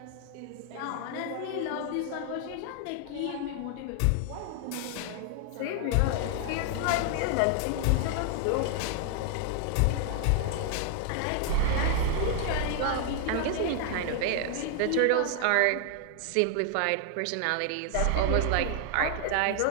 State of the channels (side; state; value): both; different; correlation 0.00